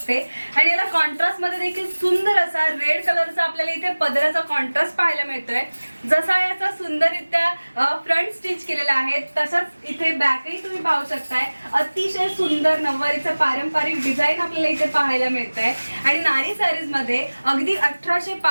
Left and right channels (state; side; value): inverted; both; correlation -1.00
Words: आणि याला कॉन्ट्रास्ट मध्ये देखील सुंदर असा रेड कलरचा आपल्याला इथे पदराचा कॉन्ट्रास्ट पाहायला मिळतोय। जसा याचा सुंदररित्या फ्रंट स्टिच केलेला आहे तसाच इथे बॅकही तुम्ही पाहू शकताय। अतिशय सुंदर नववारीचं पारंपरिक डिझाईन आपल्याला इथे पाहायला मिळतंय आणि नारी सारीज मध्ये अगदी 1800